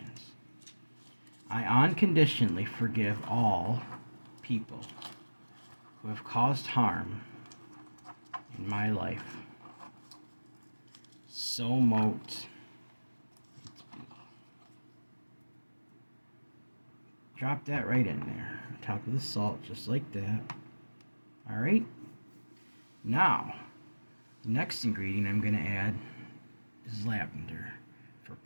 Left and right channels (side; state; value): both; inverted; correlation -1.00